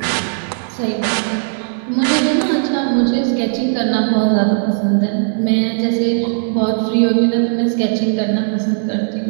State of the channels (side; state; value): left; silent; digital silence